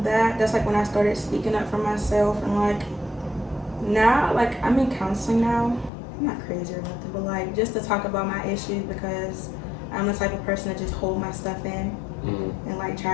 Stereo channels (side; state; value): right; drops out; at 5.9 s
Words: that, that's like when I started speaking up for myself, and like now, like I'm in counseling now. I'm not crazy or nothing, but like just to talk about my issues because I'm the type of person to just hold my stuff in and like try